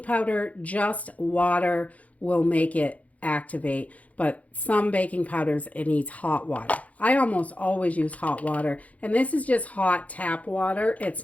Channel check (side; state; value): right; late; 0.068 ms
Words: powder, just water will make it activate, but some baking powders, it needs hot water. I almost always use hot water, and this is just hot tap water. It's